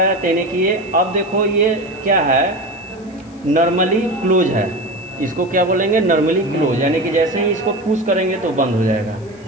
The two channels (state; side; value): noise; left; hiss, 29 dB below the sound